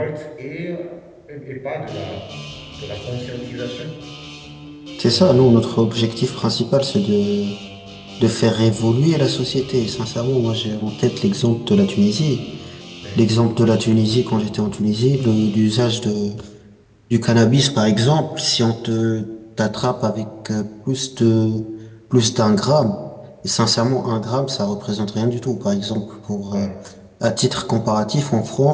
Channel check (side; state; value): both; identical; correlation 1.00